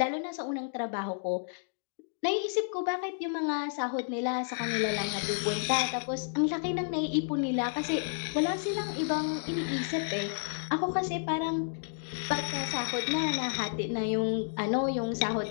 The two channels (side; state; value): right; silent; digital silence